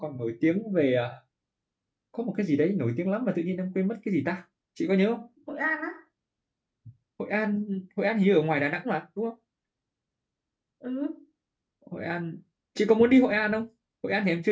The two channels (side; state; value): both; identical; correlation 1.00